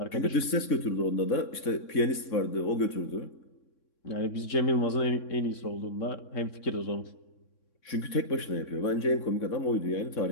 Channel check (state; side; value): late; right; 3.6 ms